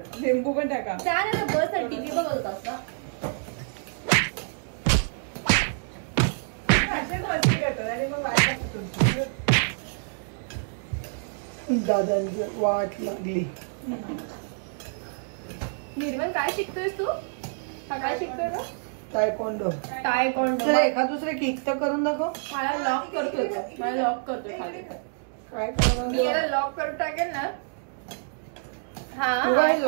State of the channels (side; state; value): left; silent; digital silence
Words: लिंबू पण टाका. छान आहे. बस टीव्ही बघत असता. दादांची वाट लागली. निर्मल काय शिकतोयस तू? काय शिकतोय का? टायकोंडो. एका दुसरे किक तर करून दाखव. मला लॉक करतोय. खाली काय मी याला लॉक करून टाकेल ना. हा